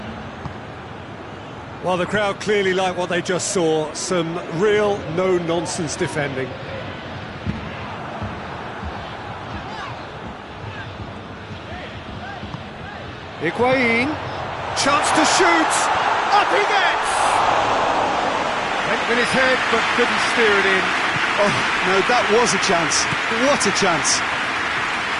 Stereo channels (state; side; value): identical; both; correlation 1.00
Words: Well, the crowd clearly like what they just saw, some real no-nonsense defending. Higuain, chance to shoot, up he gets! Went with his head, but couldn't steer it in. Oh, no, that was a chance. What a chance.